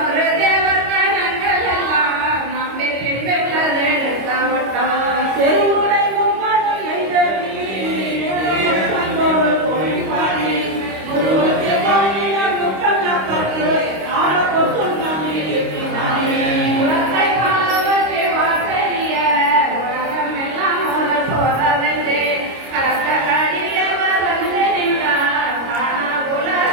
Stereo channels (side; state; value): left; late; 25 ms